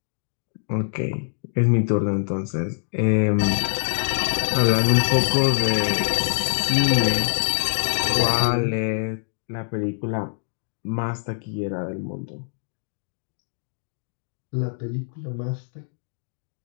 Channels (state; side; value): silent; right; digital silence